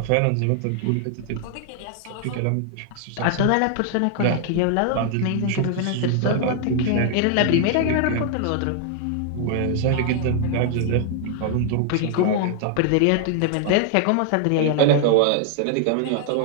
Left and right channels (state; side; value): different; both; correlation 0.00